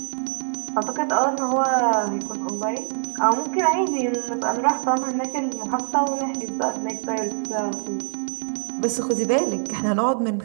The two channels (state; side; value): silent; left; 63 dB below the other